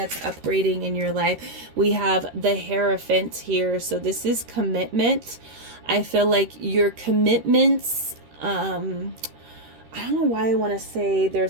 upgrading in your life. We have the Hierophant here. So this is commitment. I feel like your commitments, I don't know why I want to say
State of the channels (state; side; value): late; left; 13 ms